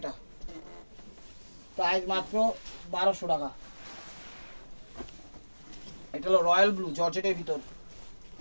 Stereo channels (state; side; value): inverted; both; correlation -1.00